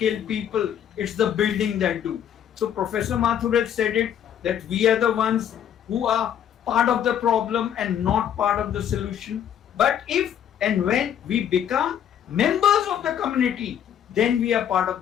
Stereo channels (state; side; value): quieter; right; 9.6 dB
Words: people. It's the building that do. So Professor Mathur said it, that we are the ones who are part of the problem and not part of the solution. But if and when we become members of the community, then we are part of